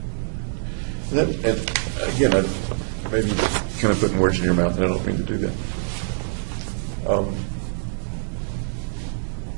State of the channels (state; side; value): silent; left; digital silence